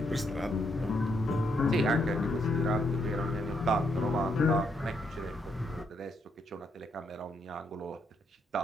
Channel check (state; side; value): normal; both; correlation 0.76